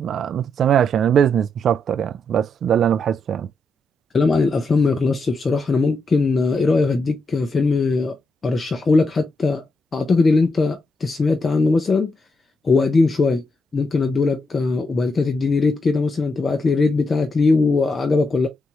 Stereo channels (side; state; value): both; normal; correlation 0.82